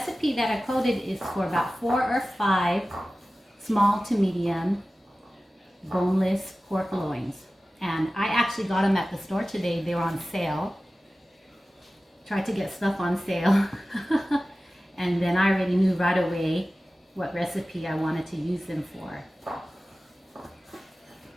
that I quoted is for about 4 or 5 small to medium boneless pork loins. And I actually got them at the store today. They were on sale. Tried to get stuff on sale. And then I already knew right away what recipe I wanted to use them for.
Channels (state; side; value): normal; both; correlation 0.96